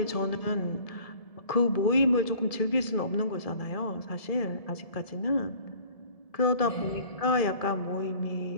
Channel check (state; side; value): late; right; 1.7 ms